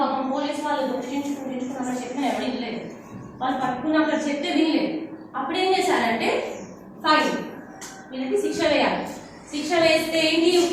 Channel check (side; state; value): both; identical; correlation 1.00